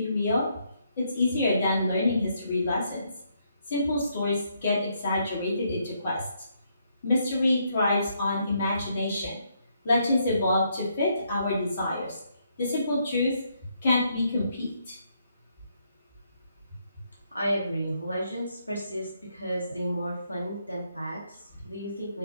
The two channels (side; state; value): both; inverted; correlation -0.75